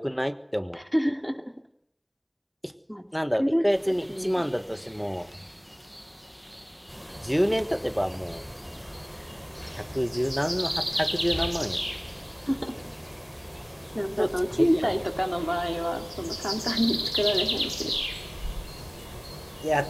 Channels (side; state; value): both; identical; correlation 1.00